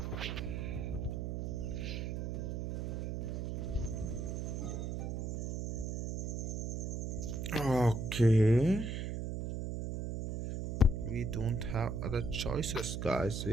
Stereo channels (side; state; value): right; noise; hum, 3 dB below the sound